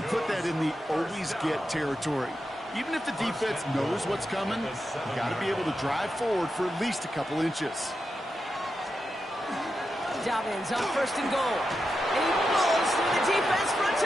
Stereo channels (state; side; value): normal; both; correlation 0.88